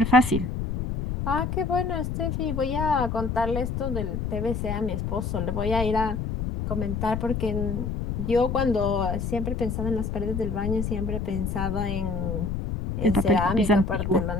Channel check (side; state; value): left; noise; rumble, 3 dB below the sound